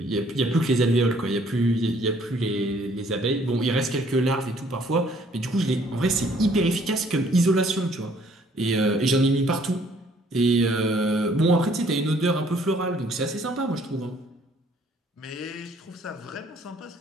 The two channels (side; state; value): both; normal; correlation 0.61